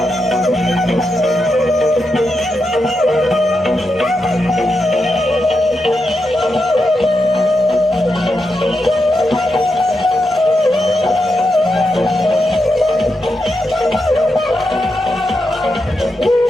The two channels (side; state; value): both; normal; correlation 0.86